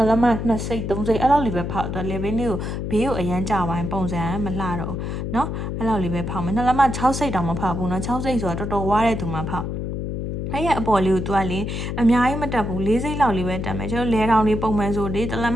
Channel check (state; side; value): noise; left; hum, 4 dB below the sound